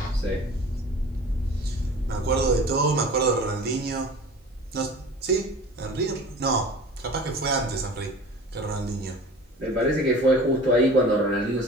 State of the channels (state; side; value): normal; both; correlation 0.40